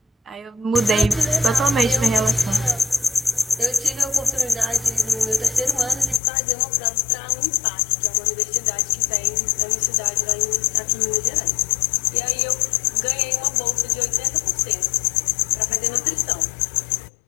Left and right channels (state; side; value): drops out; right; at 6.2 s